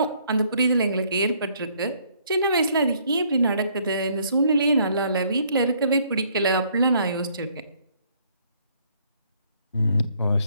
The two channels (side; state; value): both; inverted; correlation -0.65